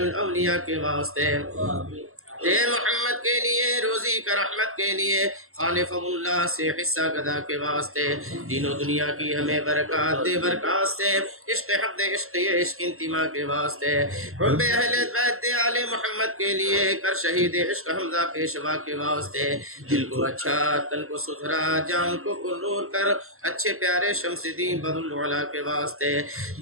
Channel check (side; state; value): left; late; 0.62 ms